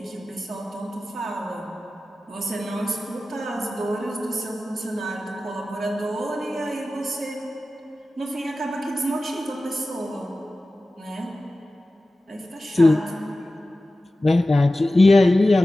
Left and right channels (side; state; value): both; normal; correlation 0.95